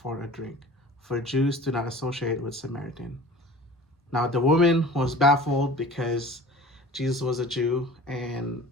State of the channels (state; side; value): normal; both; correlation 0.42